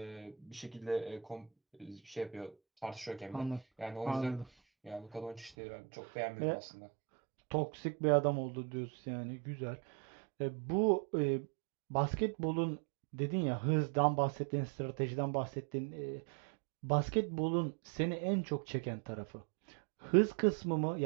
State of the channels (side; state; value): left; drops out; at 5.5 s